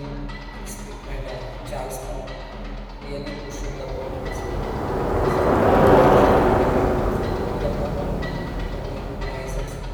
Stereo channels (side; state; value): both; identical; correlation 1.00